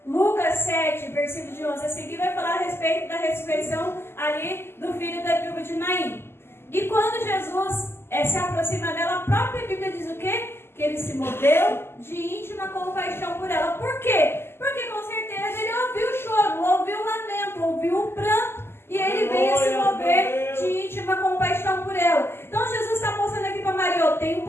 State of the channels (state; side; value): late; right; 0.12 ms